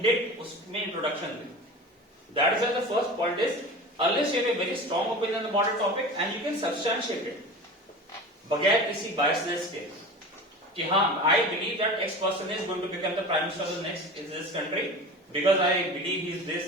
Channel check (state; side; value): normal; both; correlation 0.33